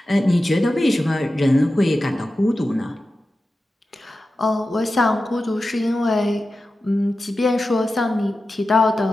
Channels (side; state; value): both; normal; correlation 0.93